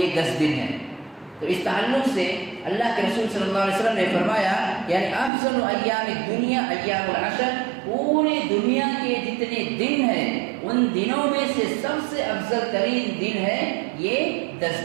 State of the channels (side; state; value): left; drops out; at 5.3 s